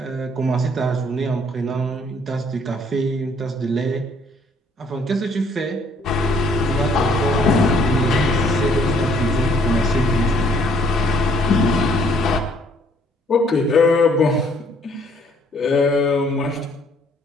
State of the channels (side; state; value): both; normal; correlation 0.63